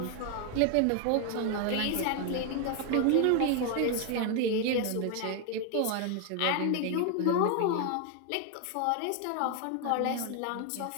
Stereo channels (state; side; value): different; both; correlation 0.01